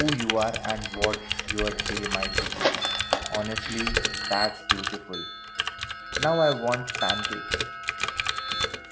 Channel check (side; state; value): both; identical; correlation 1.00